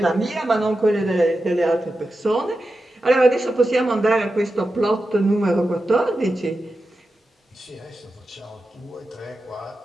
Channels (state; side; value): normal; both; correlation 0.91